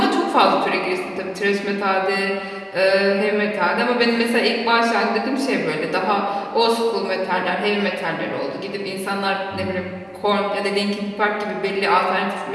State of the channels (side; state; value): both; identical; correlation 1.00